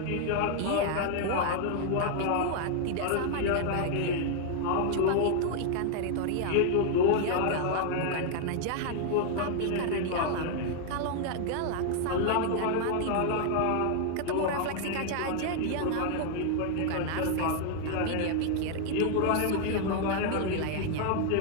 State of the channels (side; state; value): both; different; correlation 0.00